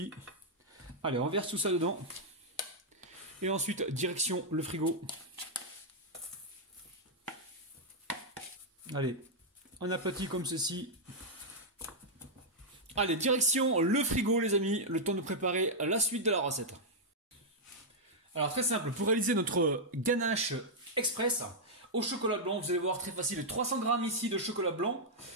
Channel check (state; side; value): normal; both; correlation -0.05